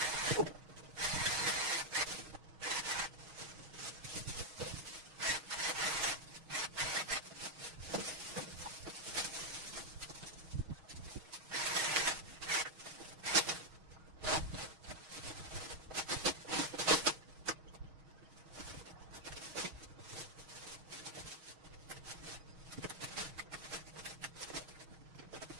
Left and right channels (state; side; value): late; left; 6.4 ms